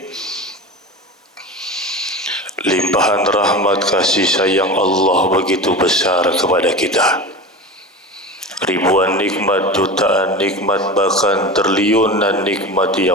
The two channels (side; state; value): both; normal; correlation 0.29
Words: Limpahan rahmat kasih sayang Allah begitu besar kepada kita. Ribuan nikmat, jutaan nikmat, bahkan triliunan nikmat